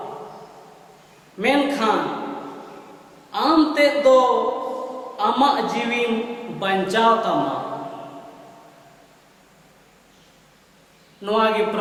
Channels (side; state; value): both; identical; correlation 1.00